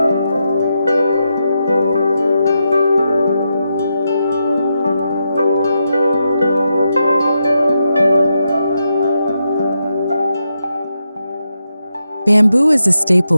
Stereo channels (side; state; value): both; inverted; correlation -0.85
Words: Bamboo is a